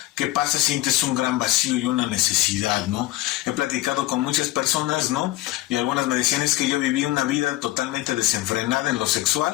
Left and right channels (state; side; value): quieter; right; 16.9 dB